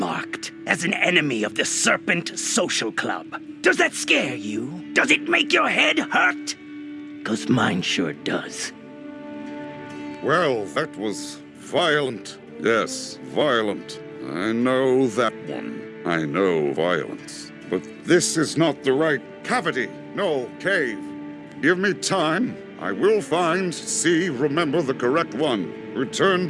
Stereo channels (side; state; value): both; identical; correlation 1.00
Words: as an enemy of the Serpent Social Club. Does that scare you? Does it make your head hurt? 'Cause mine sure does. Well, that was violent. Yes, violent. I know that one. I know violence. But this is not the right cavity. No, cave. Give me time. I will find, see, remember the correct one. Return